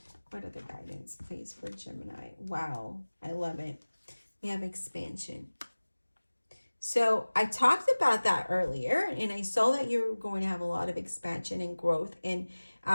What other guidance, please, for Gemini? Wow, I love it. We have expansion. So I talked about that earlier, and I saw that you're going to have a lot of expansion and growth, and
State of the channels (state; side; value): inverted; both; correlation -1.00